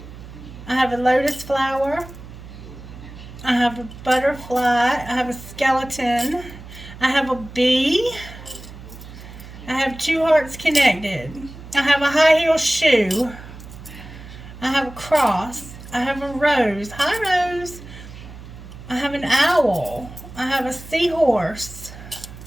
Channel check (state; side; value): noise; right; hum, 15 dB below the sound